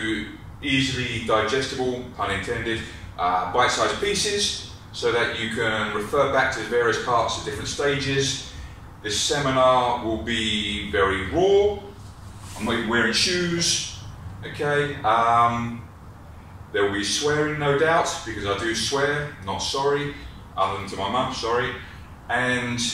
easily digestible, pun intended, bite-sized pieces so that you can refer back to the various parts at different stages. This seminar will be very raw. I'm not even wearing shoes, okay? There will be swearing, no doubt, because I do swear, not sorry, other than to my mum, sorry. And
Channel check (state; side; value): identical; both; correlation 1.00